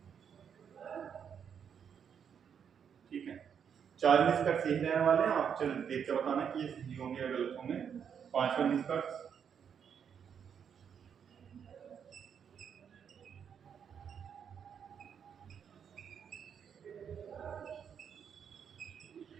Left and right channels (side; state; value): left; quieter; 7.7 dB